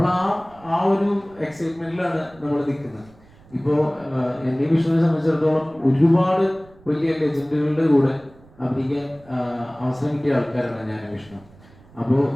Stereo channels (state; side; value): noise; right; rumble, 26 dB below the sound